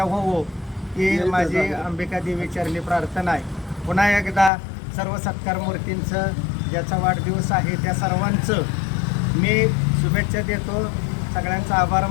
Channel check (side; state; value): right; drops out; at 4.5 s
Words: होवो ही माझी अंबिका देवी चरणी प्रार्थना आहे. पुन्हा एकदा सर्व सत्कार मूर्तींचं ज्याचा वाढदिवस आहे त्या सर्वांचं मी शुभेच्छा देतो. सगळ्यांचा आभार